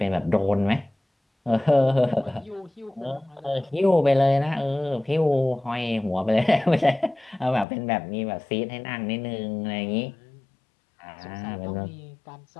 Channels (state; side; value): drops out; right; at 7.7 s